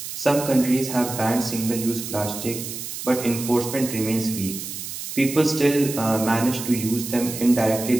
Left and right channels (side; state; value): right; noise; hiss, 8 dB below the sound